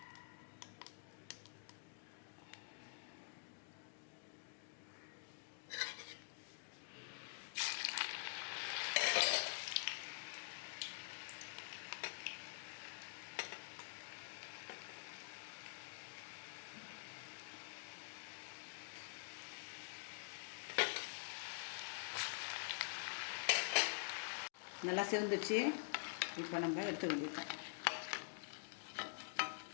நல்லா சிவந்துச்சு. இப்போ நம்ம எடுத்து வந்துட்டோம்.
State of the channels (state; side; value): silent; right; digital silence